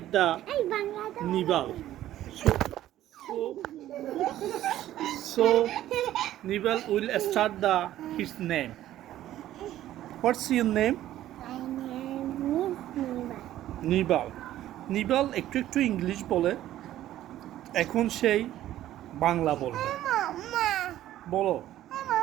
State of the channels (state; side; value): quieter; left; 13.3 dB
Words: the Nibal. So Nibal will start his name. What's your name? My name is Niva. নিবাল নিবাল একটু একটু English বলে এখন সেই বাংলা বলবে Mama. বলো